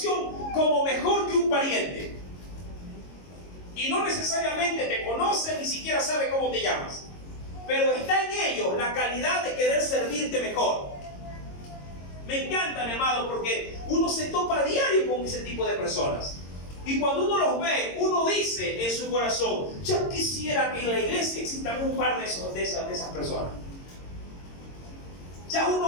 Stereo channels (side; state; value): right; late; 22 ms